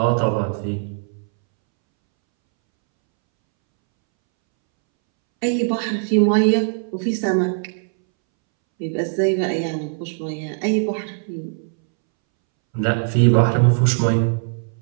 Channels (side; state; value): left; silent; 64 dB below the other